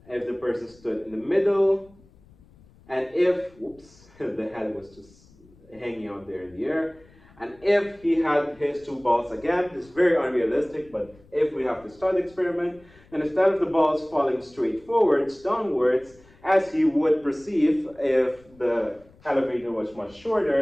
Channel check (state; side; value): noise; left; rumble, 27 dB below the sound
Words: If the person stood in the middle, and if, whoops, the head was just hanging out there in the air, and if he had his two balls again, it's very unrealistic, but if we have this thought experiment, then instead of the balls falling straight forwards, downwards, as he would perceive if the elevator was much